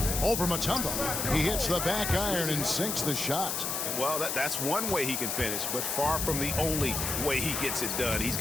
Over Mutombo. He hits the back iron and sinks the shot. Well, that's one way he can finish, but far from the only way he gets it done. He's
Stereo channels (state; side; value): noise; left; hiss, 1 dB below the sound